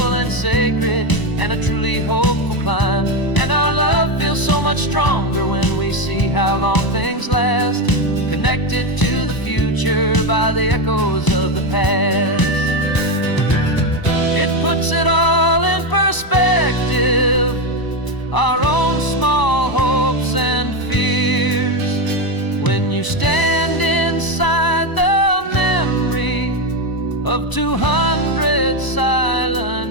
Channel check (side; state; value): right; late; 1.0 ms